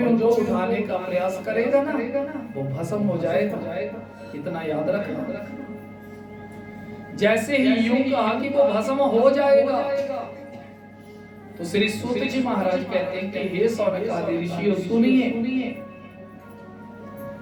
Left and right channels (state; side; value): identical; both; correlation 1.00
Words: उनको उठाने का प्रयास करेगा ना, वो भस्म हो जाएगा। इतना याद रखना। जैसे ही यूं कहा कि वो भस्म हो जाएगा, तो श्री सूत जी महाराज कहते हैं कि हे सौनक आदि ऋषियों सुनिए।